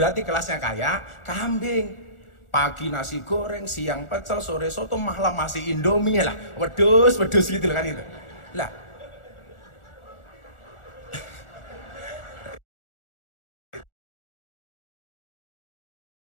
kelasnya kayak kambing. Pagi nasi goreng, siang pecel, sore soto, malam masih Indomie lah. Wedus gitu kan itu. Lah.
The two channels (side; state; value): right; late; 1.4 ms